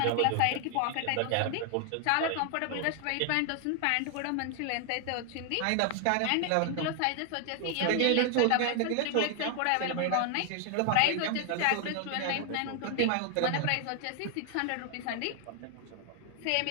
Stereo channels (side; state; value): both; different; correlation 0.00